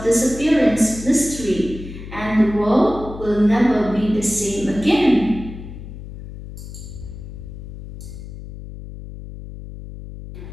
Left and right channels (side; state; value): left; noise; hum, 12 dB below the sound